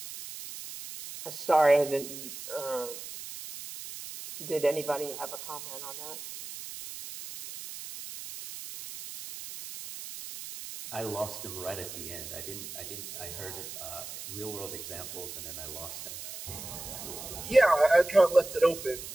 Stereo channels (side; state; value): right; noise; hiss, 10 dB below the sound